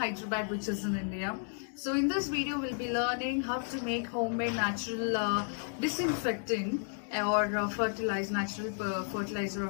which is in India. So in this video, we'll be learning how to make homemade natural disinfectant or natural fertilizer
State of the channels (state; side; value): silent; right; 56 dB below the other